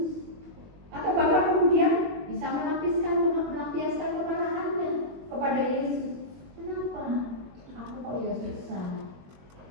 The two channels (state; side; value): late; left; 21 ms